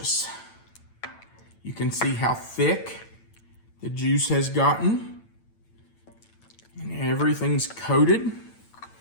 You can see how thick the juice has gotten. And everything's coated.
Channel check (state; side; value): late; right; 9.0 ms